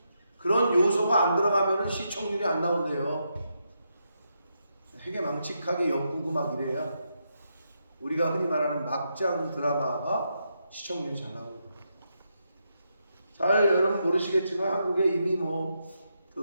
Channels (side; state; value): both; inverted; correlation -0.82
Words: 그런 요소가 안 들어가면 시청률이 안 나온대요. 되게 망측하게 엮고 막 이래야 우리가 흔히 말하는 막장 드라마가 시청률이 잘 나옵니다. 잘 여러분 모르시겠지만 한국에 이미